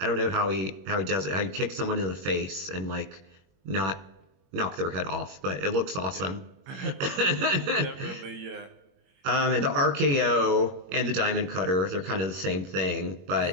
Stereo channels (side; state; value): left; late; 22 ms